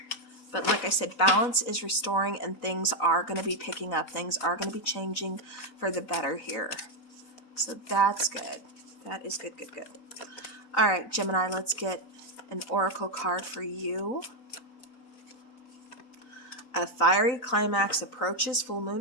But like I said, balance is restoring, and things are going to be picking up. Things are going to be changing for the better here. So that's good. That is good, good, good. All right, Gemini, let's get an oracle card for you. A fiery climax approaches, full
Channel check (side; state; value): right; late; 4.2 ms